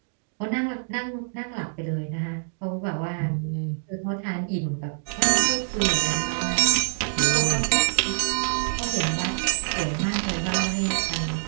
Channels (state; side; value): silent; left; digital silence